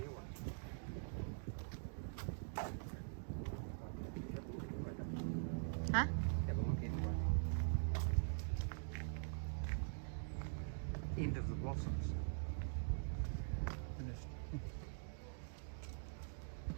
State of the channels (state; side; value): silent; left; digital silence